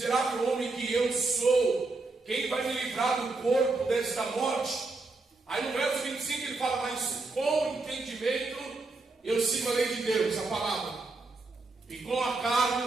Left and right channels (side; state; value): left; quieter; 3.5 dB